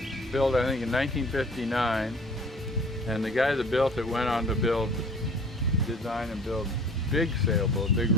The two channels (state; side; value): normal; both; correlation 0.49